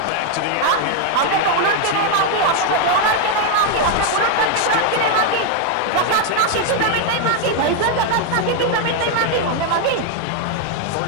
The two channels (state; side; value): different; both; correlation 0.00